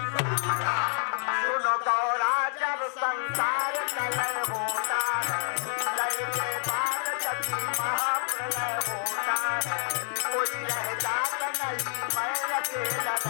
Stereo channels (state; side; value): silent; right; digital silence